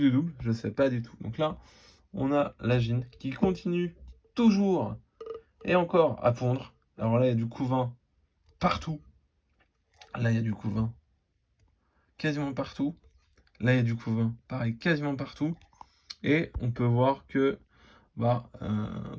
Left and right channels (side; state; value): both; identical; correlation 1.00